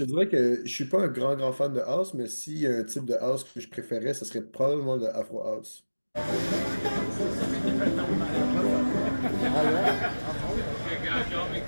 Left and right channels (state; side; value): inverted; both; correlation -1.00